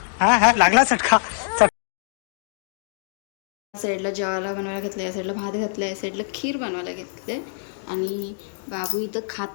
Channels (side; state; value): right; silent; digital silence